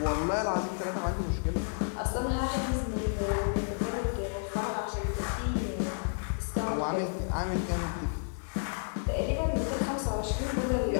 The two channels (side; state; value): right; silent; 57 dB below the other